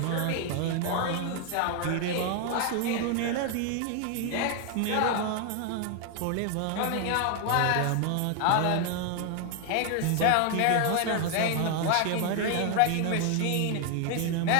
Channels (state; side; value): different; both; correlation 0.00